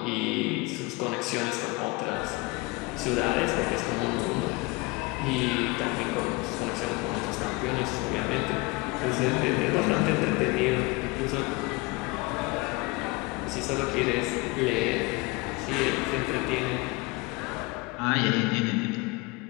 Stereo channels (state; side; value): quieter; right; 24.6 dB